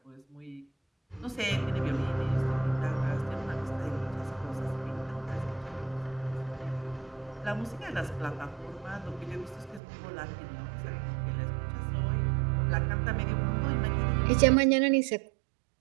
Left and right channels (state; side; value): drops out; left; at 9.8 s